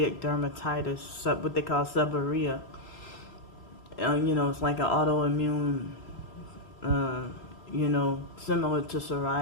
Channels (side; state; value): right; late; 3.0 ms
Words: dermatitis, what they call seborrhea. It's like an autoimmune, similar to